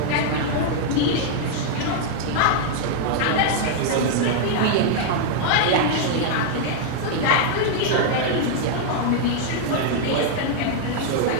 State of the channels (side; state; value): both; different; correlation 0.00